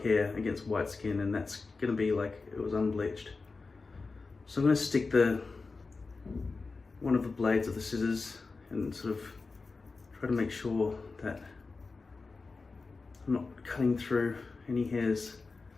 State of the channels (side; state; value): right; quieter; 4.1 dB